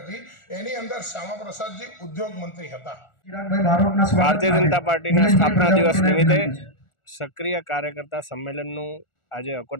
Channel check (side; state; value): right; late; 1.4 ms